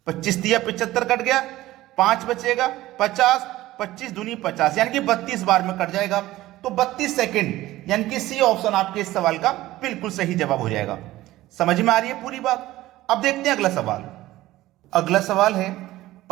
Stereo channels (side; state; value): left; quieter; 16.4 dB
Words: 25 तिया 75 कट गया, 5 बचेगा 50, 25 दूनी 50, यानी कि 32 बार में कट जाएगा। तो 32 सेकंड, यानी कि सी ऑप्शन आपके इस सवाल का बिल्कुल सही जवाब हो जाएगा। समझ में आ रही है पूरी बात? अब देखते हैं अगला सवाल। अगला सवाल है,